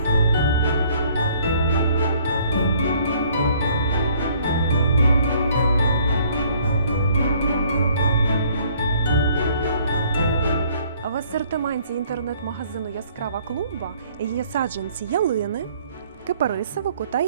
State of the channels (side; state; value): both; inverted; correlation -0.60